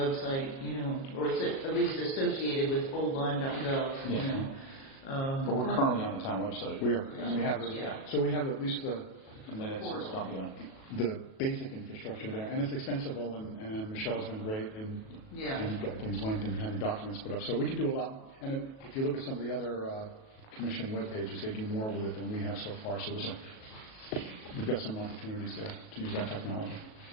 or it's at least associated with oldlyme.gov, But we're currently on the town website. We are, and we have so we have at least the minutes and stuff, the basic infrastructure there, and it's extensible, and Michelle's been great, and you've got things linked and having documents put up. So we can do a lot, and if you look at some of the other commission web pages, they do more with it than we have so far. So we've got some opportunities there to use that technology.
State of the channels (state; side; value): late; right; 37 ms